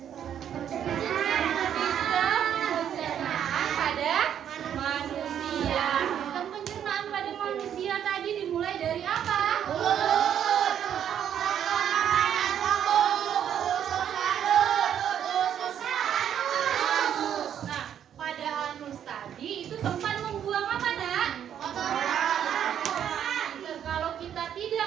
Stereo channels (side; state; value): left; quieter; 9.5 dB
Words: Sistem pencernaan pada manusia. Sistem pencernaan pada manusia tadi dimulai dari apa? Nah, pada anus tadi itu tempat membuang apa, Nak? Kalau kita